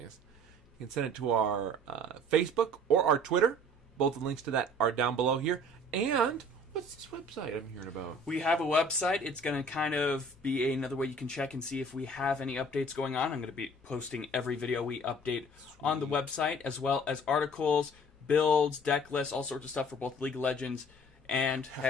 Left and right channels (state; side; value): normal; both; correlation 0.50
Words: You can send it to our Facebook or our Twitter. Both the links to that are down below here. And what's this website I'm hearing about? We have a website. It's going to kind of be another way you can check and see if we have any updates going on. I'm going to be posting every video we update on the website, as well as articles, builds, deck lists, all sorts of stuff for both League of Legends and